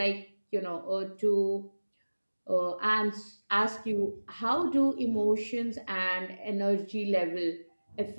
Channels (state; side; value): inverted; both; correlation -1.00